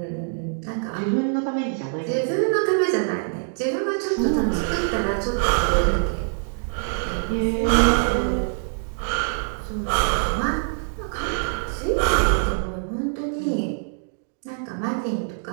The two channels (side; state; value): left; silent; digital silence